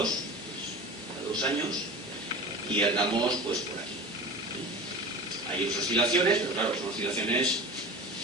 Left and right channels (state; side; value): normal; both; correlation 0.33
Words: pues, a 2 años, y andamos pues por aquí. Hay oscilaciones, pero claro, son oscilaciones